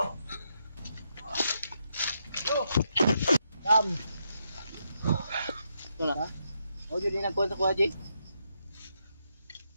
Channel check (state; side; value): inverted; both; correlation -0.80